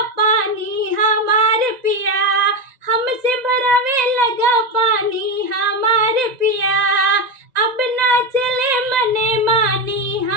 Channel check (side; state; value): left; late; 1.9 ms